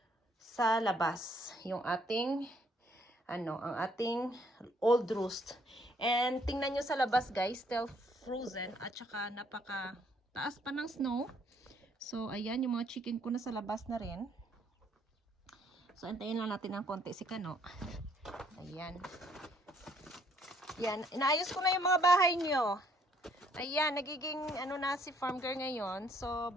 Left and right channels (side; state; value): both; normal; correlation 0.66